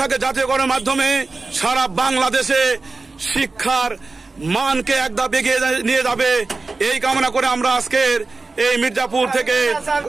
জাতীয়করণের মাধ্যমে সারা বাংলাদেশে শিক্ষার মানকে এক ধাপ এগিয়ে নিয়ে যাবে, এই কামনা করে আমরা আজকের এই মির্জাপুর থেকে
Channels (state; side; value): quieter; left; 3.7 dB